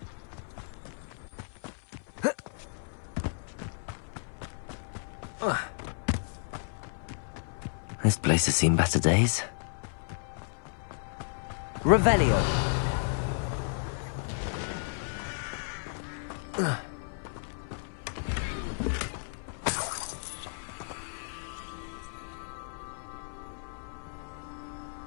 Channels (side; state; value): right; silent; 56 dB below the other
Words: This place has seen better days. Revelio.